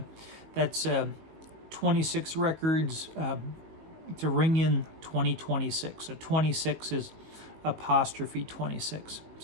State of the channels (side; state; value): left; late; 19 ms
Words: that's 26 records to ring in 2026. So 26 is apostrophe 26.